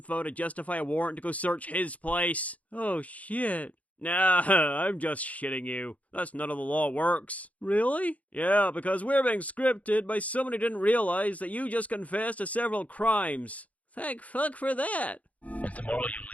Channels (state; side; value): late; right; 0.069 ms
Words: to justify a warrant to go search his place. Oh shit. Nah, I'm just shitting you. That's not how the law works. Really? Yeah, because we're being scripted by someone who didn't realize that you just confessed to several crimes. Thank fuck for that. And tomorrow you